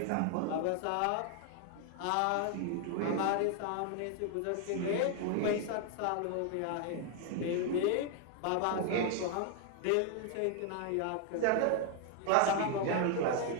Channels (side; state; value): both; different; correlation 0.00